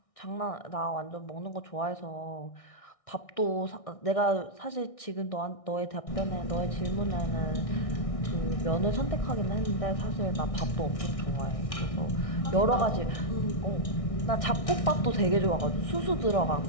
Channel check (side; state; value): right; late; 1.6 ms